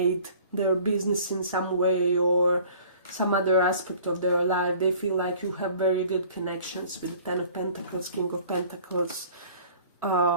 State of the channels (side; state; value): both; inverted; correlation -0.50